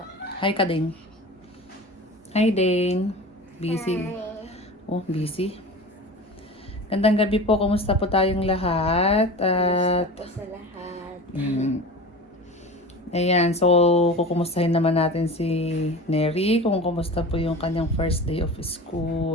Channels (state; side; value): normal; both; correlation 0.33